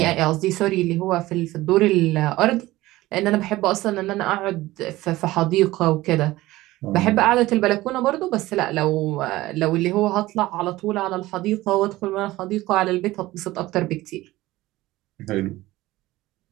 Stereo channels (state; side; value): quieter; left; 17.7 dB